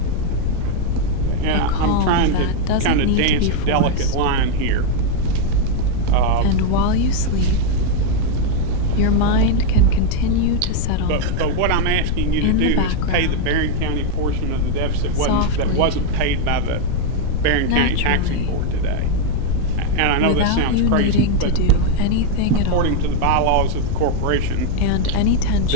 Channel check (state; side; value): different; both; correlation 0.01